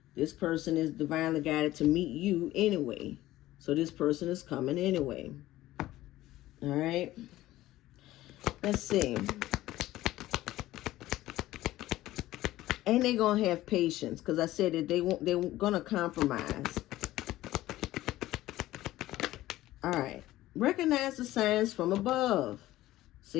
this person is divinely guided to meet you anyway. So this person is coming anyway. All right. Let's see. And they're going to have patience, because I said that they're going to compromise. All right. Recognize the signs from above.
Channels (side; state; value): right; quieter; 15.8 dB